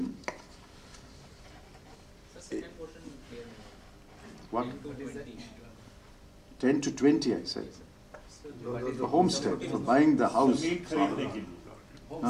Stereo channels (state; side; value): identical; both; correlation 1.00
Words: what? 10 to 20, I said. For homestead, for buying the house.